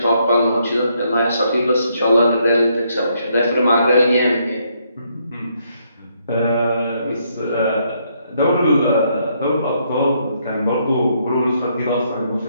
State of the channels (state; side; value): inverted; both; correlation -0.73